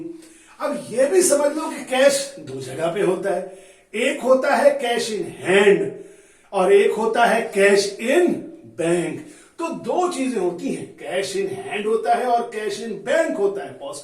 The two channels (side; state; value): both; identical; correlation 1.00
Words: अब यह भी समझ लो कि कैश दो जगह पे होता है, एक होता है कैश इन हैंड और एक होता है कैश इन बैंक। तो दो चीजें होती हैं, कैश इन हैंड होता है और कैश इन बैंक होता है। पॉज